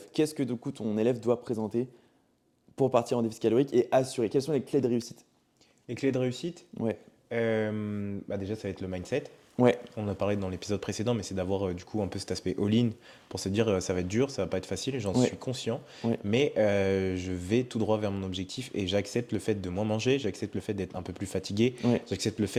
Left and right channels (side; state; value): both; identical; correlation 1.00